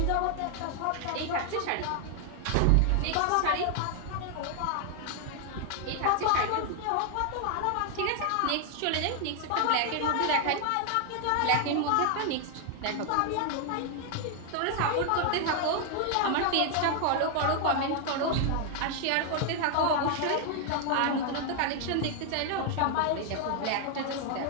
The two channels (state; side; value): different; both; correlation 0.00